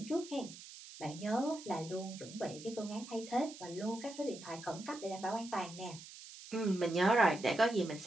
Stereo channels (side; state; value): right; noise; hiss, 15 dB below the sound